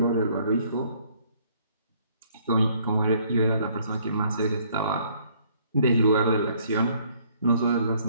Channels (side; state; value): both; inverted; correlation -0.63